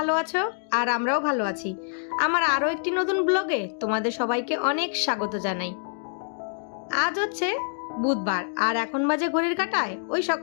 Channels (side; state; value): right; silent; digital silence